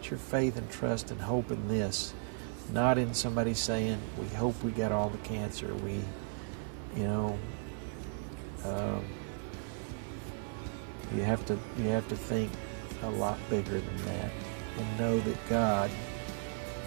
faith and trust and hope in this, not in somebody saying, we hope we got all the cancer. You have to think a lot bigger than that. and know that God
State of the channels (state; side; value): silent; left; 54 dB below the other